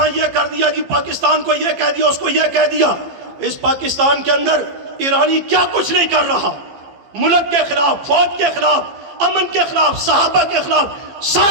یہ کر دیا جی، پاکستان کو یہ کہہ دیا، اس کو یہ کہہ دیا. اس پاکستان کے اندر ایرانی کیا کچھ نہیں کر رہا، ملک کے خلاف، فوج کے خلاف، امن کے خلاف، صحابہ کے خلاف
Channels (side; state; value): left; late; 15 ms